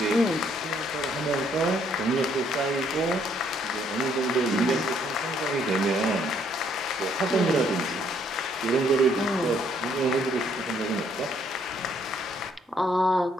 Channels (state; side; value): normal; both; correlation 0.67